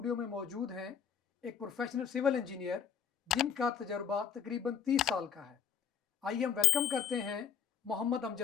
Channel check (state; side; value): quieter; right; 8.1 dB